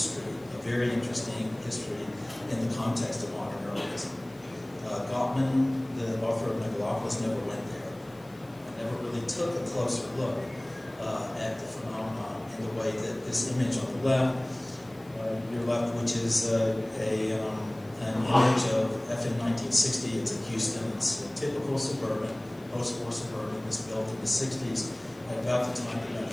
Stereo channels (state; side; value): noise; left; hiss, 28 dB below the sound